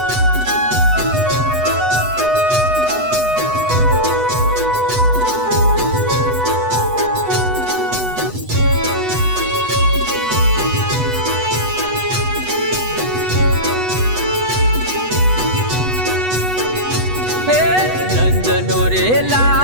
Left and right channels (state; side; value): late; left; 8.1 ms